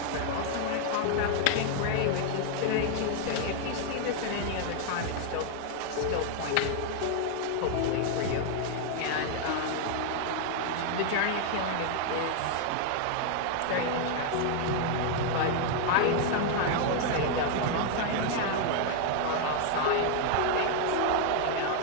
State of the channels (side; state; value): both; different; correlation 0.00